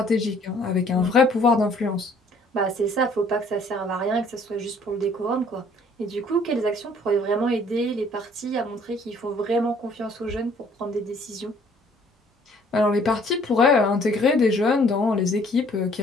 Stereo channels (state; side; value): normal; both; correlation 0.59